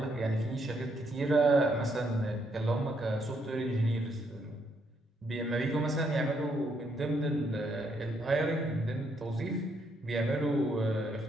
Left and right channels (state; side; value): normal; both; correlation 0.74